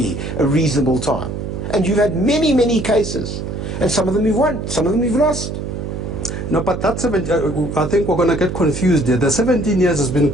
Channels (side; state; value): right; noise; hum, 6 dB below the sound